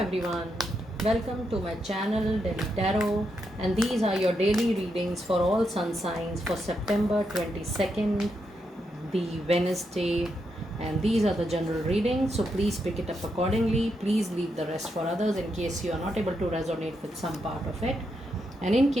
welcome to my channel Delhi Tarot, and these are your daily readings for all sun signs for September 22nd, the Wednesday, and these are the general readings, so please pick it up accordingly. Please leave the rest for others in case you are not able to resonate with some part of it. And in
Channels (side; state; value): both; normal; correlation 0.82